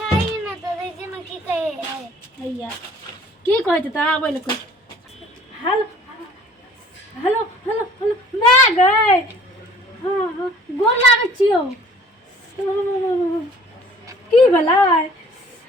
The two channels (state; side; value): normal; both; correlation 0.52